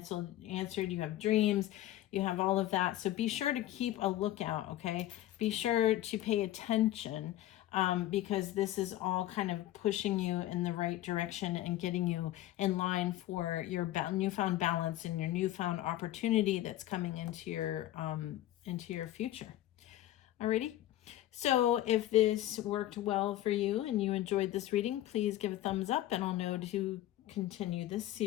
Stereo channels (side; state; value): right; quieter; 14.3 dB